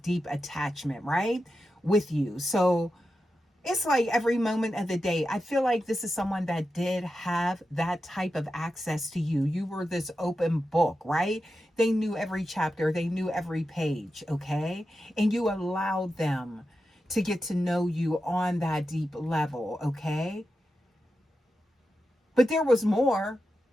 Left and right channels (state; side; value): normal; both; correlation 0.90